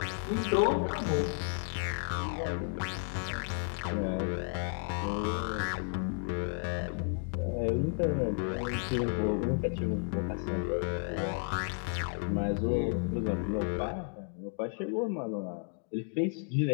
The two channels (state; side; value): silent; right; 56 dB below the other